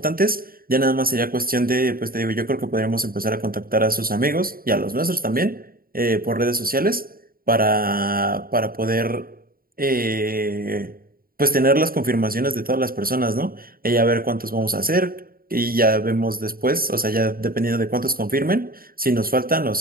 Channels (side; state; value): left; late; 0.43 ms